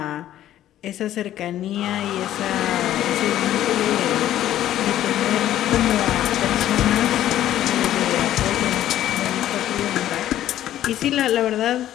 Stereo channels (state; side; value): quieter; right; 12.5 dB